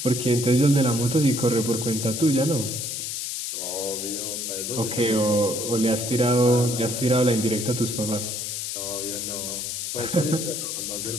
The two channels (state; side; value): noise; left; hiss, 4 dB below the sound